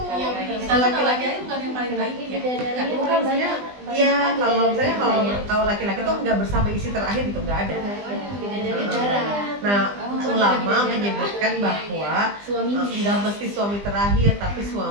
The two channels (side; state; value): left; late; 20 ms